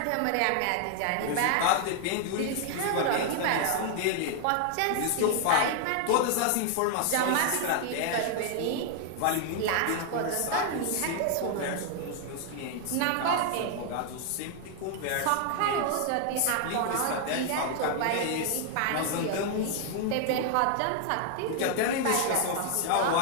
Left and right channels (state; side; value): different; both; correlation 0.00